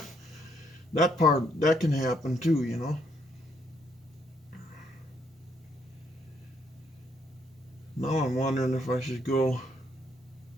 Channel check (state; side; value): normal; both; correlation 0.72